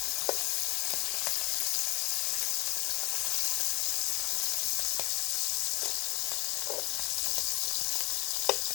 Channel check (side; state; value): right; quieter; 24.9 dB